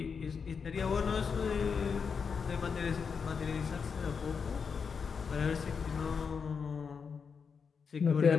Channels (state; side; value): quieter; right; 5.9 dB